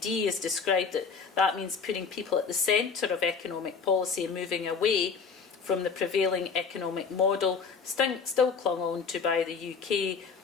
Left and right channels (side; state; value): right; quieter; 5.6 dB